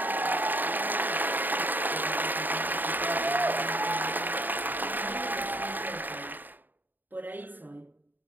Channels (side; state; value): left; late; 0.089 ms